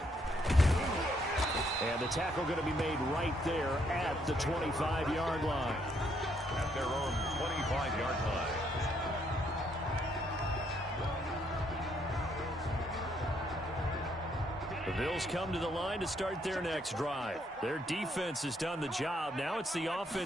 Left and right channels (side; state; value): both; normal; correlation 0.72